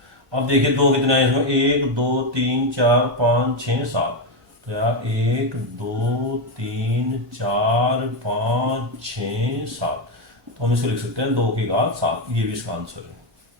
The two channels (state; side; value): normal; both; correlation 0.08